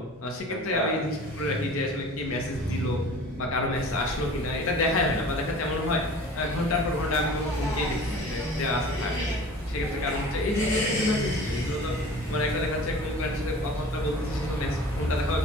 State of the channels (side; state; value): both; normal; correlation 0.42